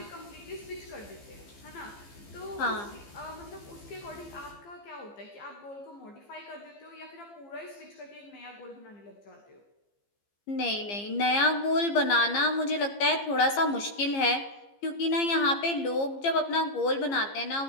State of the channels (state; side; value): late; right; 15 ms